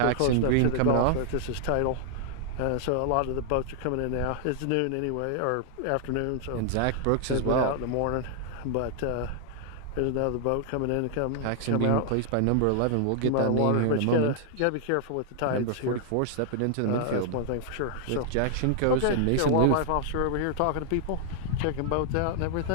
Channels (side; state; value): both; different; correlation -0.01